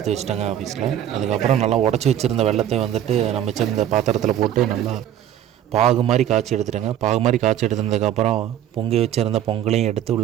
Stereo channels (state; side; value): quieter; left; 11.0 dB